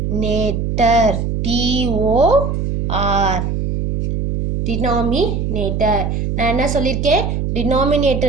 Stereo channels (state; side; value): noise; right; hum, 1 dB below the sound